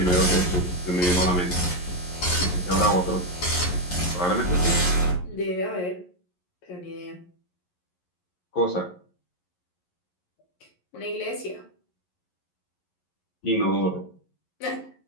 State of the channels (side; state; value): right; late; 11 ms